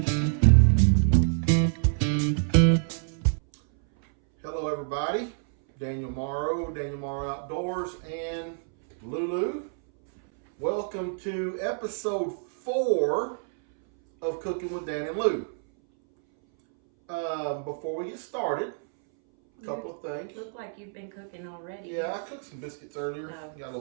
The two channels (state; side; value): silent; left; 60 dB below the other